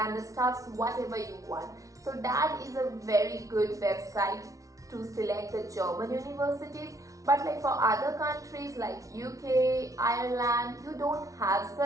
stuffs, whatever you want. So DAD is a very good website to select the German universities. But like for other countries like UK, Ireland, you don't have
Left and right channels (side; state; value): left; late; 0.16 ms